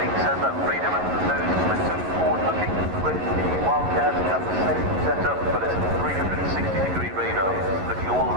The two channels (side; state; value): left; late; 11 ms